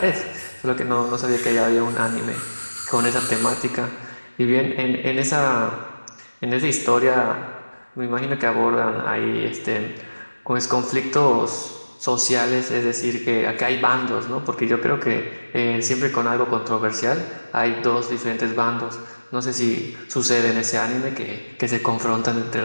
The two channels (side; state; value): both; inverted; correlation -1.00